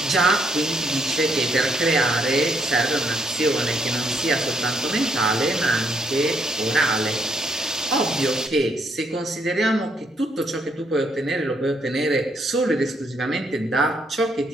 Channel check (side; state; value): both; normal; correlation 0.73